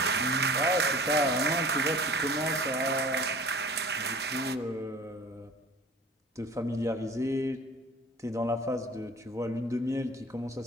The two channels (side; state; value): both; normal; correlation 0.44